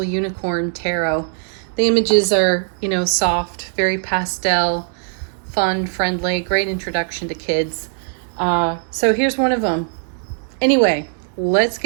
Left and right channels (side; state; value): left; silent; digital silence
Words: Unicorn Tarot. The images are, soft, very pastel, fun, friendly, great introduction to kids. So here's one of them. Anyway, let's